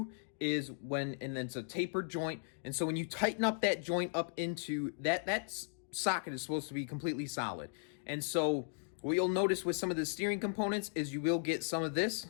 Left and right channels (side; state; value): right; silent; digital silence